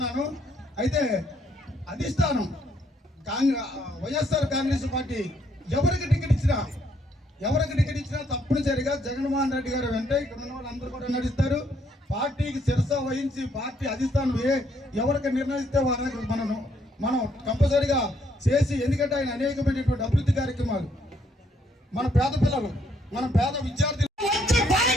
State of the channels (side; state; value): both; normal; correlation 0.70